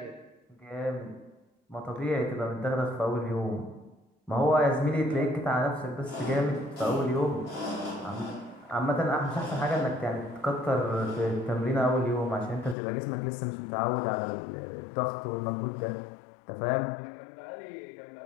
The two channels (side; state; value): right; drops out; at 12.8 s